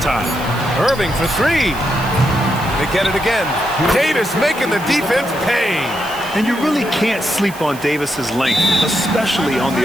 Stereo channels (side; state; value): right; noise; hiss, 17 dB below the sound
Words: Irving for 3. They get it again. Davis making the defense pay. And you really can't sleep on Davis's length, especially on